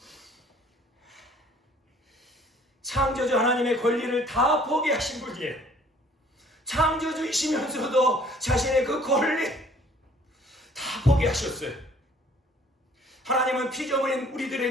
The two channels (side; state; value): both; normal; correlation 0.56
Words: 창조주 하나님의 권리를 다 포기하신 분이에요. 창조주이시면서도 자신의 그 권리 다 포기하셨어요. 하나님은 피조물인